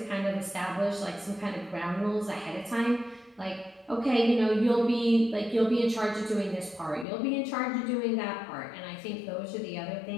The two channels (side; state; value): right; drops out; at 7.1 s